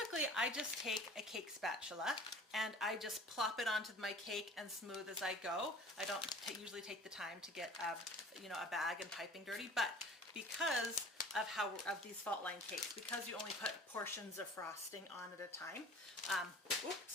I just take a cake spatula and I just plop it onto my cake and smooth as I go. I don't usually take the time to get a bag and piping dirty, but because of these fault line cakes, because you only put portions of frosting on at a time.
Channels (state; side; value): normal; both; correlation 0.45